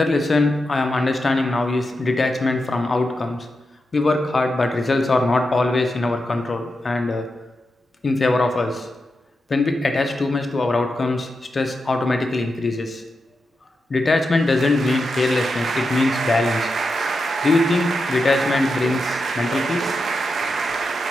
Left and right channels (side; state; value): both; normal; correlation 0.88